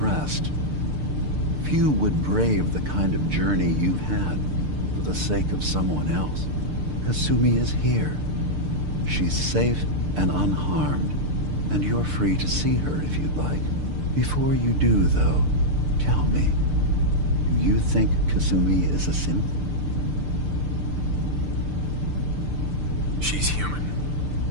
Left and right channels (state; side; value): late; left; 6.7 ms